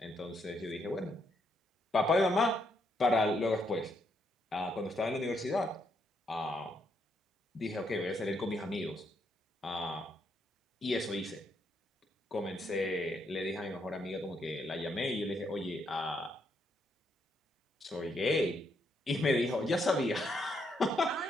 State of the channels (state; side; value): normal; both; correlation 0.76